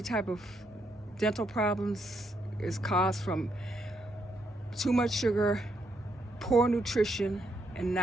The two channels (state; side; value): normal; both; correlation 0.77